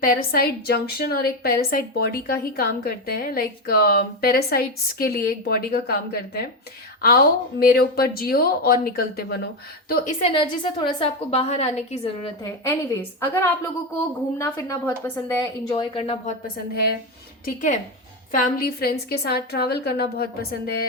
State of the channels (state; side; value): normal; both; correlation 0.12